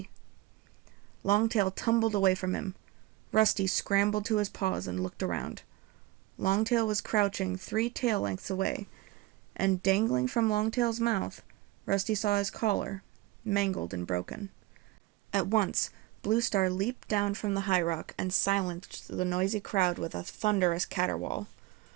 Longtail tumbled away from him. Rusty scrambled to his paws and looked around. Longtail was crouching 3 tail lengths away, and dangling from Longtail's mouth, Rusty saw his collar, mangled and broken. At once, Bluestar leaped down from the high rock and silenced the noisy crowd with a thunderous caterwaul.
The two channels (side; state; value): left; quieter; 18.7 dB